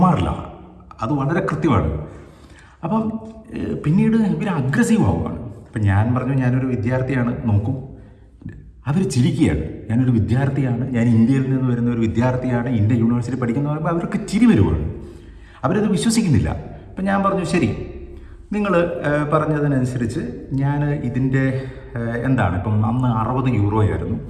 അത് വളരെ കൃത്യമാണ്. അപ്പം പിന്നീട് ഇവർ അഗ്രസീവ് ആവുകയാണ്. അപ്പം ഞാൻ പറഞ്ഞു ഞാനൊരു വിദ്യാർത്ഥിയാണ്, നോക്കും. അവർ ചിരിക്കുകയാണ്. ഞാനൊരു വിദ്യാർത്ഥിയാണ്, ഞാൻ ഇന്ത്യയിൽ നിന്ന് വരുന്ന ഒരു വിദ്യാർത്ഥിയാണ്, ഇന്ത്യ യൂണിവേഴ്സിറ്റി പഠിക്കുന്ന പറയുമ്പോൾ അവർക്ക് ചിരി വരുവാണ്. അവരത് വിശ്വസിക്കുന്നില്ല. അപ്പം ഞാൻ പറഞ്ഞു ശരി, നിങ്ങൾ പറഞ്ഞതിനനുസരിച്ച് ഞാൻ ഇതിൻ്റെ എന്താണ്, ഇപ്പം അന്ന് 60 യൂറോയായിരുന്നു,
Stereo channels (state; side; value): identical; both; correlation 1.00